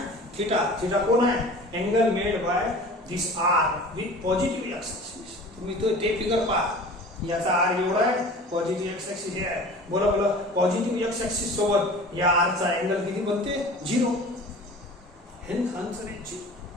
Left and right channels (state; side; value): normal; both; correlation 0.41